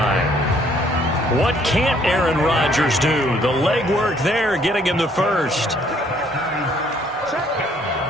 What can't Aaron Rodgers do? The legwork there getting him the first.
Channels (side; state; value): both; normal; correlation 0.64